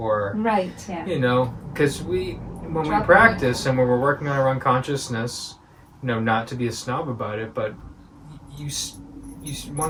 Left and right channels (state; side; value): identical; both; correlation 1.00